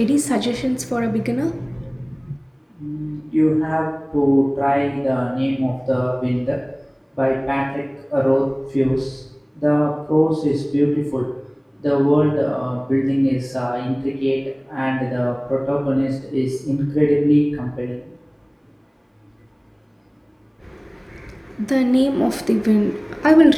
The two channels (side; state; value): both; identical; correlation 1.00